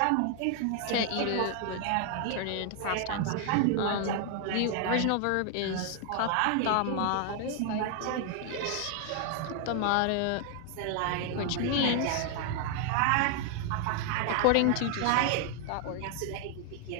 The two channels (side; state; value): both; different; correlation 0.00